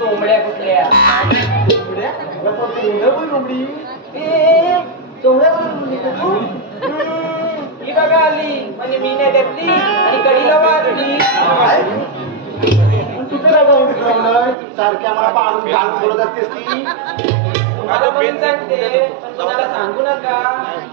कुठल्या ही बघा आली म्हणजे मी नाही घेतली आणि कडीला वाजली सारख्या मला पाडून घालून बोलत असतेस ती तुम्हाला म्हणून सांगते पण कोणाला सांगू नका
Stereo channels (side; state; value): left; drops out; at 14.6 s